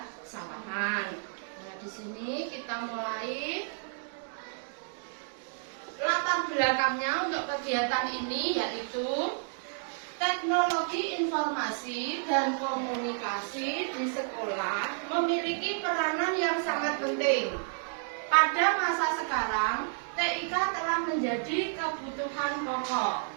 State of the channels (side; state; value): left; silent; digital silence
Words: Sawangan. Nah, di sini kita mulai. Latar belakangnya untuk kegiatan ini yaitu teknologi informasi dan komunikasi di sekolah memiliki peranan yang sangat penting. Pada masa sekarang, TIK telah menjadi kebutuhan pokok.